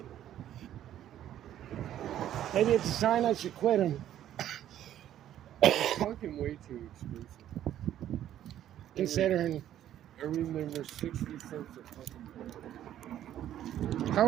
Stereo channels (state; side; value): quieter; left; 11.6 dB